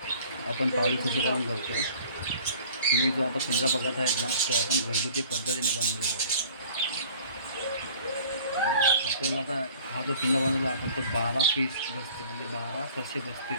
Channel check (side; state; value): both; inverted; correlation -0.50